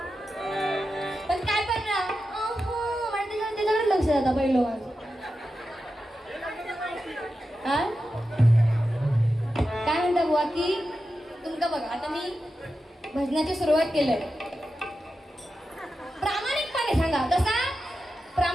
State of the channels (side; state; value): both; normal; correlation 0.91